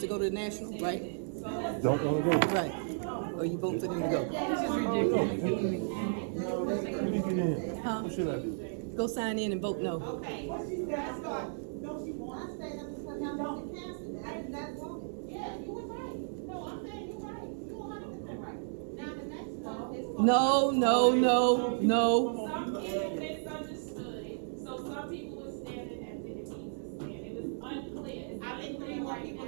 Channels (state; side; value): silent; left; digital silence